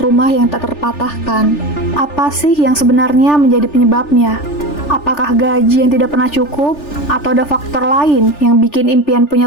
yang tak terpatahkan. Apa sih yang sebenarnya menjadi penyebabnya? Apakah gaji yang tidak pernah cukup? Atau ada faktor lain yang bikin impian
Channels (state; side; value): late; right; 3.4 ms